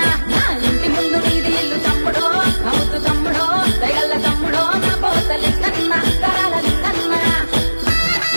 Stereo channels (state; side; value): inverted; both; correlation -1.00